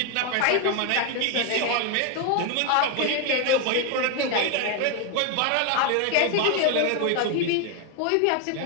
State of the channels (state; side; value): different; both; correlation 0.01